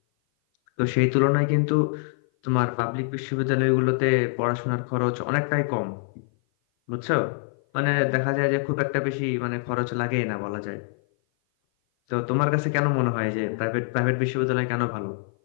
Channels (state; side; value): silent; right; 56 dB below the other